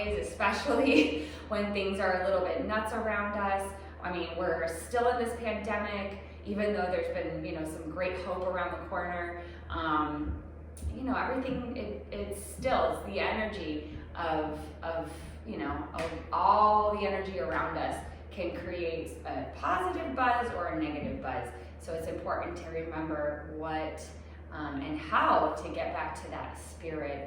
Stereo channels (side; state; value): both; identical; correlation 1.00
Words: especially when things are a little bit nuts around us. I mean, we're still in this pandemic, even though there's been, some great hope around the corner. Everything, it's the energy of all the energy around us can create a positive buzz or a negative buzz. So it's important to remember what and how to get back to that